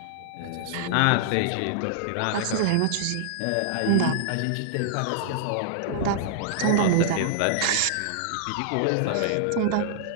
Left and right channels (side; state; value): both; different; correlation -0.01